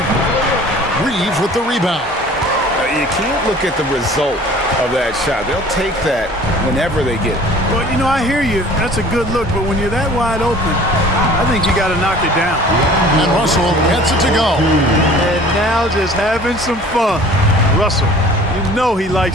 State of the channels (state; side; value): normal; both; correlation 0.48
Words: Reeves with the rebound. You can't look at the result of that shot. They'll take that whenever they get it. Well, you know, I hear you. That's a good look, but when you're that wide open, I think you got to knock it down. And Russell gets it to go. And now just having some fun. Russell, you know he